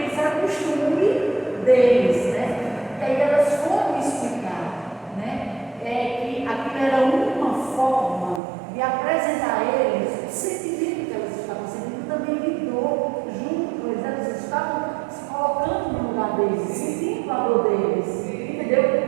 isso era costume deles, né? E aí elas foram explicar, né? Que aquilo era uma forma de apresentar a eles o sentimento que elas estavam sentindo, também lidou junto com eles, elas estavam se colocando no lugar deles, sentindo a dor deles,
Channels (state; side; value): drops out; left; at 8.4 s